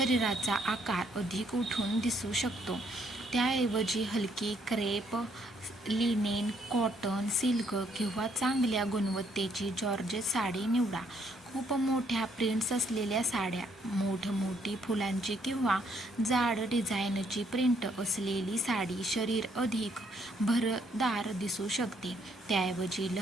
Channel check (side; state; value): both; normal; correlation 0.69